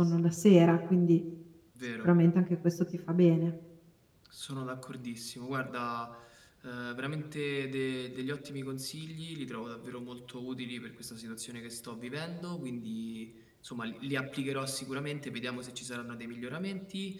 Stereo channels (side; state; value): both; identical; correlation 1.00